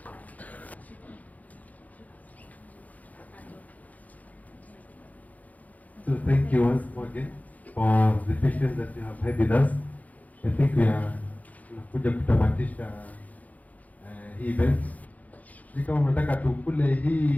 So thank you once more again for the patience that you have had with us. I think we are tunakuja kutamatisha hii event. Ni kama mnataka tukule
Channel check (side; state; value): right; late; 0.076 ms